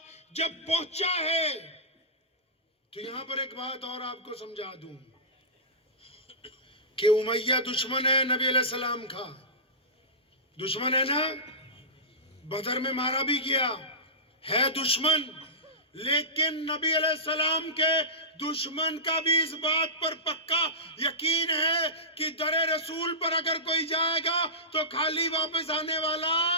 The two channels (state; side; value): normal; both; correlation -0.18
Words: جب پہنچا ہے تو یہاں پر ایک بات اور آپ کو سمجھا دوں کہ امیہ دشمن ہے نبی علیہ السلام کا, دشمن ہے نا, بدر میں مارا بھی گیا ہے دشمن, لیکن نبی علیہ السلام کے دشمن کا بھی اس بات پر پکا یقین ہے کہ در رسول پر اگر کوئی جائے گا تو خالی واپس آنے والا